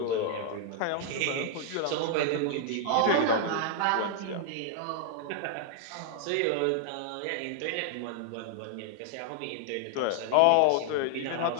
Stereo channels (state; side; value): different; both; correlation 0.00